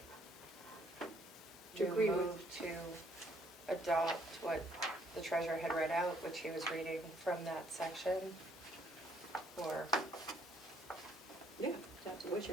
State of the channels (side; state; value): both; normal; correlation 0.66